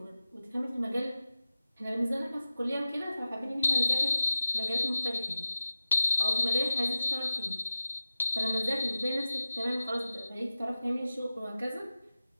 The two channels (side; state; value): both; inverted; correlation -0.95